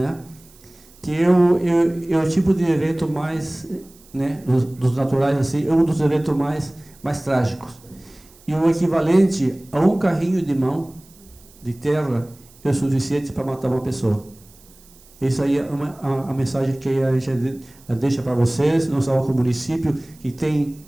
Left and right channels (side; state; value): right; noise; hiss, 26 dB below the sound